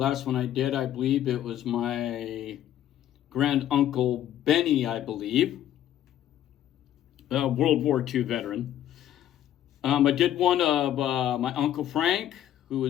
one I did, I believe it was my grand uncle Benny, I believe, World War II veteran. I did one of my uncle Frank, who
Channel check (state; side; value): quieter; right; 11.8 dB